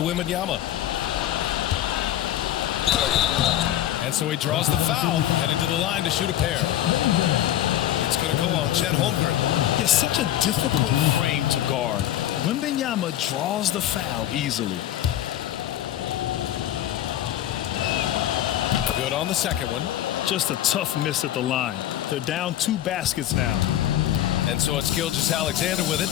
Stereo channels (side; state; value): right; quieter; 12.4 dB